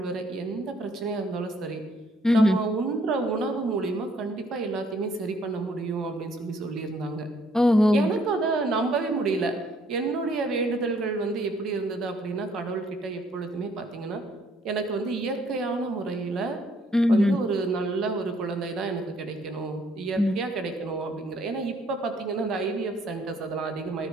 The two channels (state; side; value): normal; both; correlation 0.65